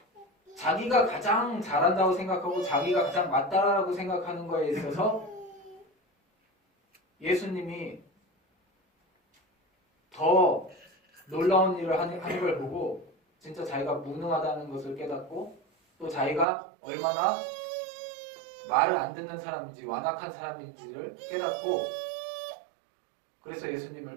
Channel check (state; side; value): drops out; left; at 16.4 s